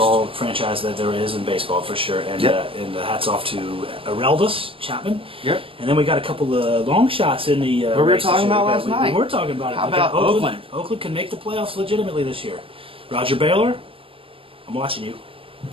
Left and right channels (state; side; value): late; left; 0.26 ms